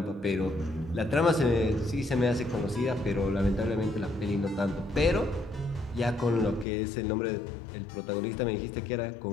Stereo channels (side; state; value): right; drops out; at 6.7 s